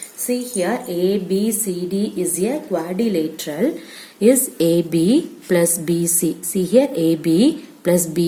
See here, ABCD is a quadrilateral. Is AB plus BC. See here, AB plus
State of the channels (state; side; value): identical; both; correlation 1.00